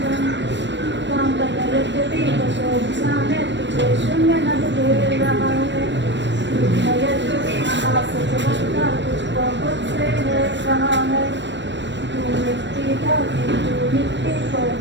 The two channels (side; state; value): left; late; 0.53 ms